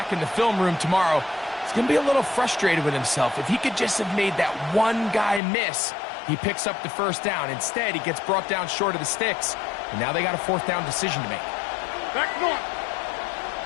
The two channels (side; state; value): right; drops out; at 5.4 s